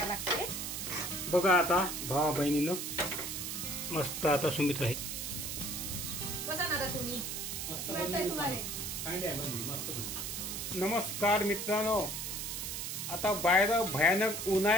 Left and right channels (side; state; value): right; noise; hiss, 4 dB below the sound